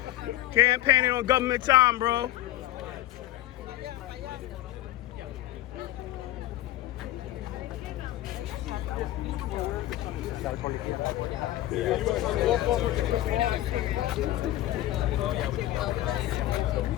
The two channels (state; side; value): quieter; right; 14.9 dB